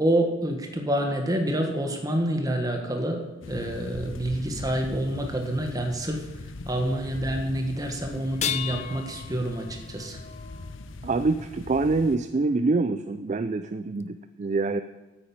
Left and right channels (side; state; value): both; normal; correlation 0.66